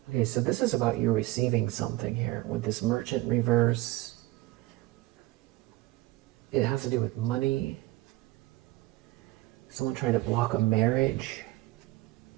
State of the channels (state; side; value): quieter; left; 18.6 dB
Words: Okay, so this is about you receiving something here with this Merchant reverse. It has to do with money. Someone trying to block a marriage.